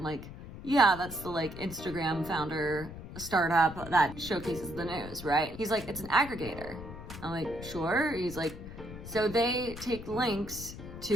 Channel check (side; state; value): left; noise; rumble, 12 dB below the sound